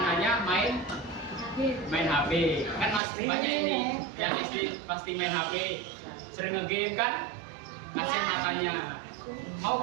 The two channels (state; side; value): drops out; left; at 3.0 s